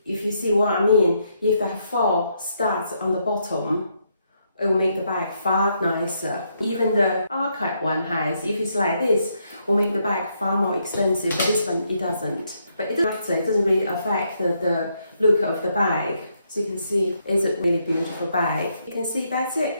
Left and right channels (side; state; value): both; inverted; correlation -0.76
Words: if you see what I mean, if there are 4 studs on the bottom, it will make the bag far nicer. Even the Arket one has, if it's like this, will make the bag far more expensive, but this one, it doesn't. But it doesn't matter, it doesn't really affect the look of the bag. So you can see, it's a really beautiful bag. You can see that's